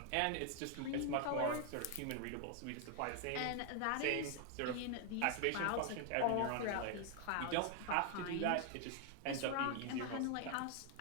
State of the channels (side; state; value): both; different; correlation 0.00